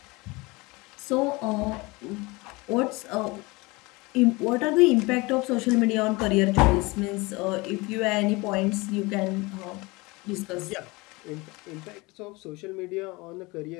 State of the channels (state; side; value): quieter; right; 24.2 dB